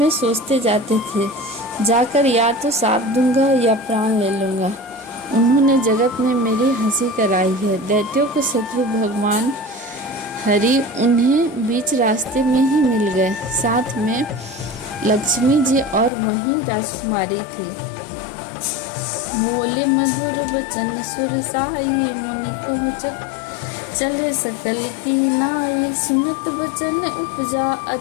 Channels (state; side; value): drops out; right; at 16.1 s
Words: सोचते जाते थे, जाकर या तो साप दूंगा या प्राण ले लूंगा। उन्होंने जगत में मेरी हंसी कराई है। दैत्यों के शत्रु भगवान हरि उन्हें बीच रास्ते में ही मिल गए। साथ में लक्ष्मी जी और वहीं राजकुमारी थी। बोले मधुर वचन सुरसाई, मुनि को चले सकल की नाई। सुनत वचन उपजा